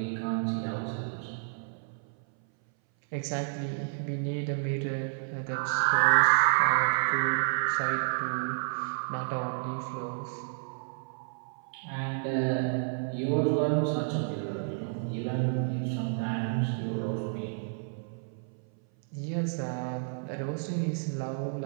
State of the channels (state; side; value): silent; left; 57 dB below the other